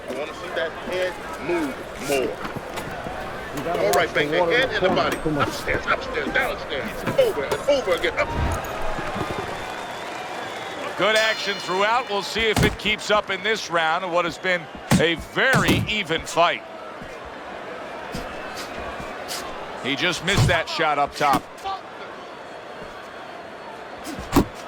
I want to see that head move more. All right, bang the head and the body. Upstairs, downstairs, over and over again. Up. Good action throughout. We'll see if it keeps up in this round of what has been a very even fight. He just missed that shot up top.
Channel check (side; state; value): both; identical; correlation 1.00